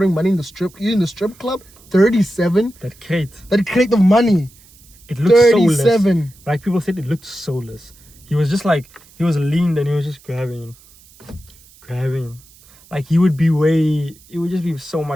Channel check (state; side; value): noise; right; hiss, 26 dB below the sound